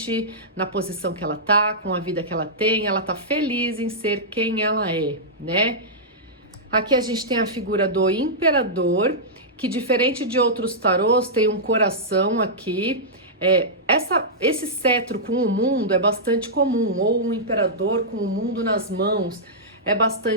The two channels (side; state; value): both; normal; correlation -0.12